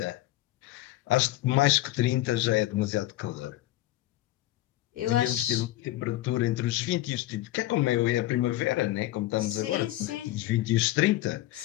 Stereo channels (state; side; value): quieter; right; 16.2 dB